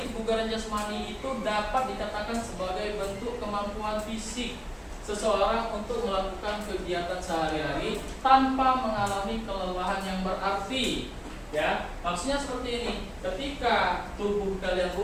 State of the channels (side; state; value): both; identical; correlation 1.00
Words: kebugaran jasmani itu dapat dikatakan sebagai bentuk kemampuan fisik seseorang untuk melakukan kegiatan sehari-hari tanpa mengalami kelelahan yang berarti. Ya, maksudnya seperti ini. Ketika tubuh kalian